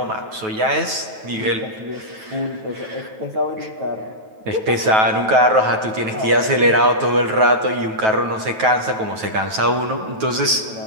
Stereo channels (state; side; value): late; left; 9.2 ms